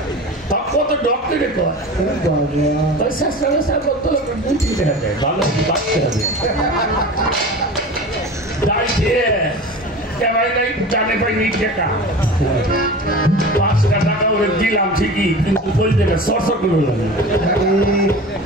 কত ডক্টরে কয় শেষরা বেসরা বদ্ধ লোকরা 2-3 টাকা দেয়, ভালো 5 টাকা দেয়। জানে পাইনি টাকা 5 টাকা ওরে দিলাম ঠিকই, কিন্তু বলতে না সরসর করে।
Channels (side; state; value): both; normal; correlation 0.34